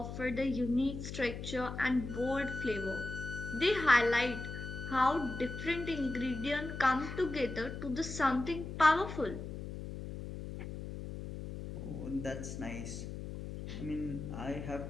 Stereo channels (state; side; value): noise; left; hum, 8 dB below the sound